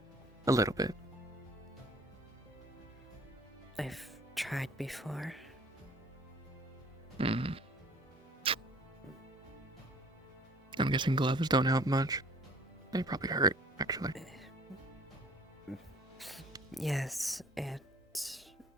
A little bit. I've tried before. Mm. I'm guessing gloves don't help much. They probably hurt, actually. Yes, it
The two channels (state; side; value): normal; both; correlation 0.53